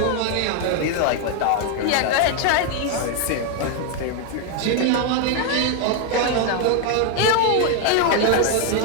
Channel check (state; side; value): different; both; correlation 0.01